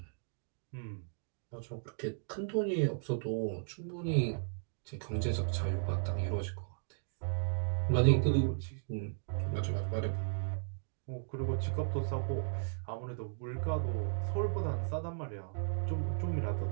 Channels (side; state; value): left; silent; digital silence